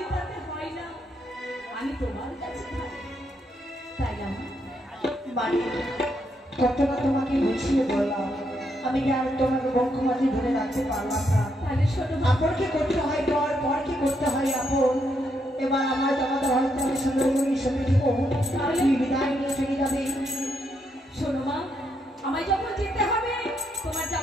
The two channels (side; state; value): both; normal; correlation 0.78